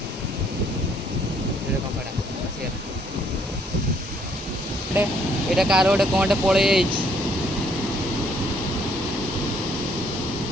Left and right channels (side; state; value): both; normal; correlation 0.66